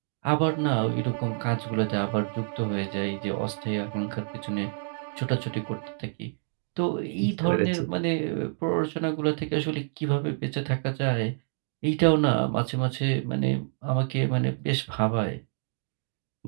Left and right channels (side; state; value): left; silent; 59 dB below the other